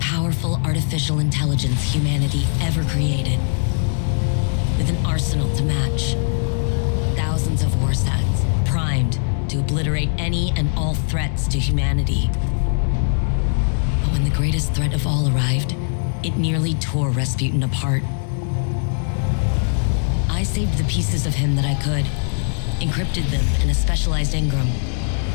artificial intelligence humanity ever created. With an arsenal to match. Thousands of war sets, primed to obliterate any and all threats to humanity. But when the greatest threat of all arrived, it nearly tore Rasputin apart. I saved the pieces of him that I could, encrypted them in a specialized engram.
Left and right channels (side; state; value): right; silent; digital silence